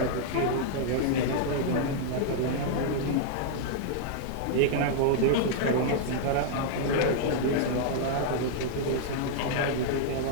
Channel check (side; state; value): both; different; correlation -0.01